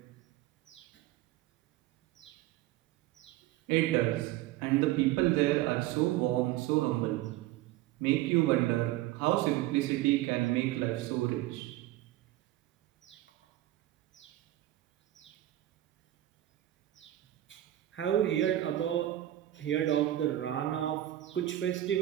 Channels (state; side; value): quieter; left; 14.8 dB